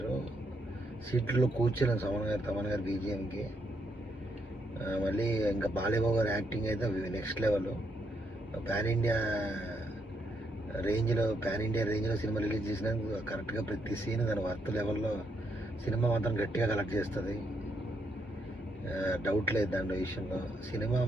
సీట్లో కూర్చోలేను తమన్ గారు బీజిఎంకి. మళ్ళీ ఇంకా బాలయ్య బాబు గారి యాక్టింగ్ అయితే నెక్స్ట్ లెవెల్. పాన్ ఇండియా రేంజ్లో సినిమా రిలీజ్ చేసినందుకు కరెక్ట్గా ప్రతి సీన్ దాని వర్త్ లెవెల్లో సినిమా మాత్రం గట్టిగా కలెక్ట్ చేస్తుంది. డౌట్ లేదు దాని విషయంలో. సినిమా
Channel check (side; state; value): both; normal; correlation 0.77